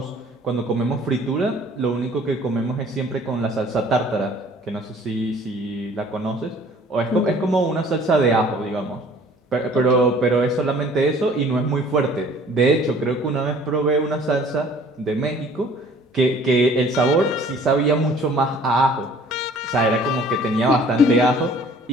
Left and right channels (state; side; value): normal; both; correlation 0.53